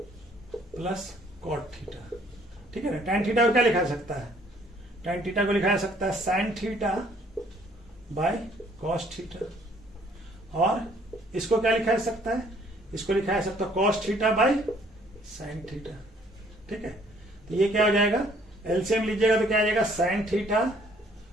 plus cot theta. ठीक है ना, tan थीटा को क्या लिखा सकता है, tan थीटा को लिखा जा सकता है sine theta by cos theta, और इसको क्या लिखा जा सकता है, इसको लिखा जा सकता है cos theta by sine theta. ठीक है, तो ये क्या हो जाएगा, एलसीएम लीजिएगा तो क्या आ जाएगा sign theta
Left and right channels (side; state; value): both; normal; correlation 0.61